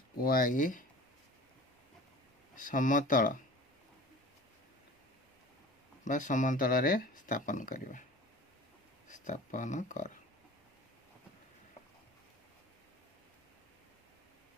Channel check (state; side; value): normal; both; correlation 0.41